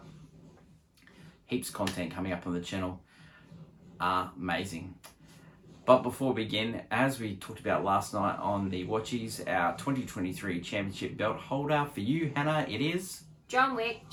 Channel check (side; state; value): both; identical; correlation 1.00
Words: Heaps of content coming up on the channel. Amazing. But before we begin, as we talked about last night on the Watchies, our 2023 championship belt holder for you, Hannah, it is John Wick